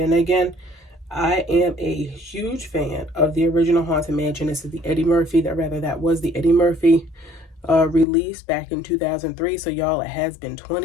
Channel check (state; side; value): drops out; right; at 8.1 s